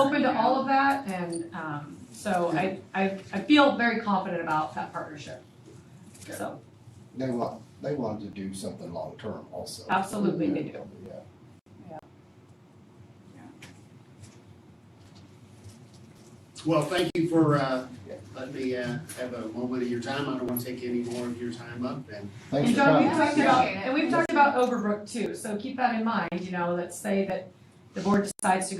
open to about. all of that, and so I feel very confident about that partnership. So, They want to do something long-term also. absolutely they do. Yeah. Well, thank you for, letting me, have a moment of your time. I don't want to take any more of your time up, and Thanks And for John, coming. we've talked about Overbrook too, so keep that in mind, let's say that the board decides to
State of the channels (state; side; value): identical; both; correlation 1.00